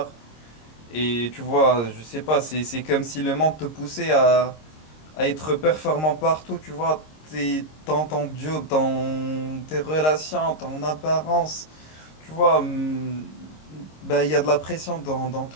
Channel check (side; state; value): right; late; 26 ms